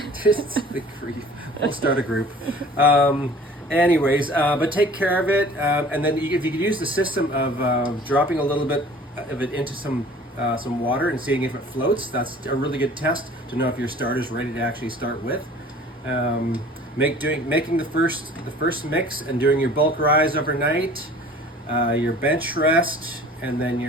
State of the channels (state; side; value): normal; both; correlation 0.47